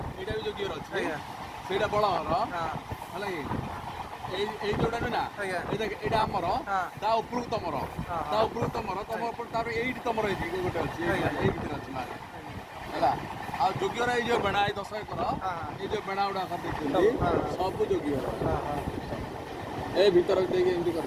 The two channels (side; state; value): both; identical; correlation 1.00